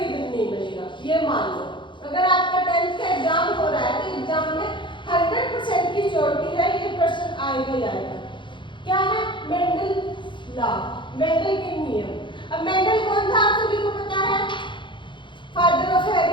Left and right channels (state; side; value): late; right; 0.23 ms